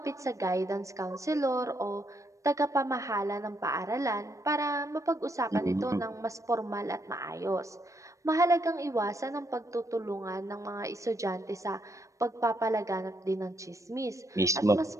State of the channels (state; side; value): late; left; 0.15 ms